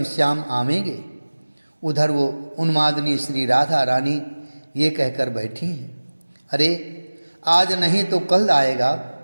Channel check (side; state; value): both; inverted; correlation -1.00